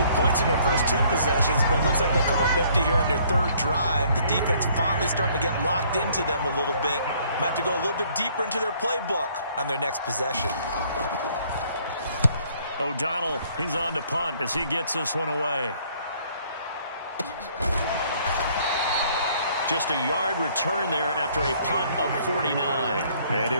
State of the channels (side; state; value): both; inverted; correlation -0.62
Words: points in their first 2 possessions, but it looks like they'll come up empty here on their third drive. The defense finally starting to get locked into them a little bit. Might have to go a little bit deeper into their playbook on their next possession. O'Donnell, he's on to punt as he gets this one away. Just a yard return there after a punt of 49. And